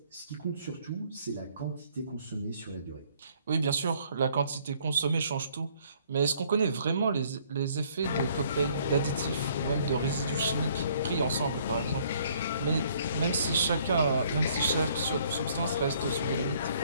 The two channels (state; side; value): inverted; both; correlation -0.62